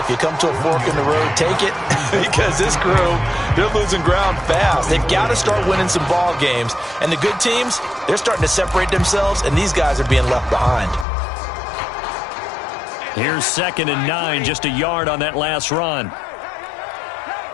you come to a fork in the road, take it. Because this crew, they're losing ground fast. They've got to start winning some ball games. And the good teams, they're starting to separate themselves, and these guys are being left behind. Here's 2nd and 9, just a yard on that last run.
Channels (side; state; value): right; drops out; at 11.1 s